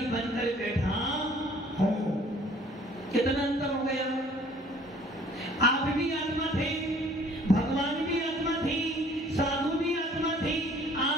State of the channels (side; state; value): both; normal; correlation 0.55